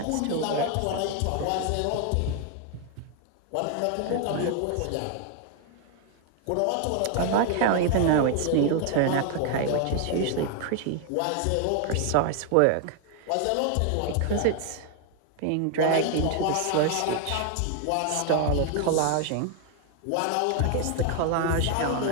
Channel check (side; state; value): both; different; correlation 0.00